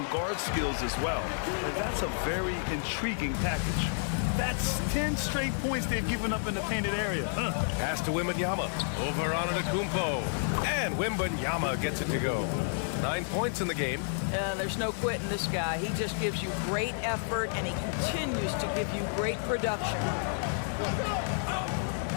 guard skills as well. And that's a very intriguing package. That's 10 straight points they've given up in the painted area. Pass to Wembanyama. Over on Antetokounmpo. And Wembanyama gets it to go. 9 points in the game. There's no quitting this guy. He just gives you great effort, and he continues to give you great production.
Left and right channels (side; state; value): right; silent; digital silence